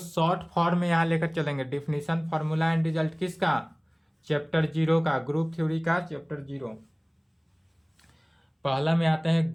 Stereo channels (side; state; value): both; identical; correlation 1.00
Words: फॉर्म में यहां लेकर चलेंगे। डिफिनीशन, फार्मूला एंड रिजल्ट किसका? चैप्टर 0 का, ग्रुप थ्योरी का चैप्टर 0। पहला में आते हैं